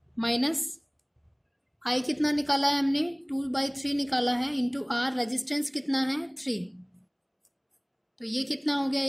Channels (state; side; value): identical; both; correlation 1.00